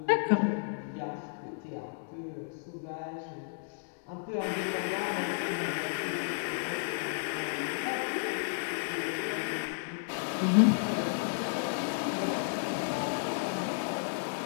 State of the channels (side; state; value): right; silent; digital silence